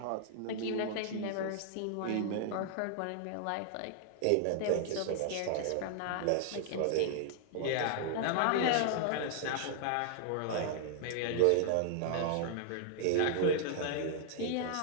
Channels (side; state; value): both; different; correlation -0.01